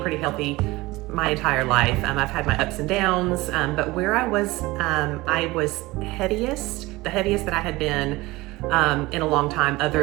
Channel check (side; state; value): left; quieter; 20.5 dB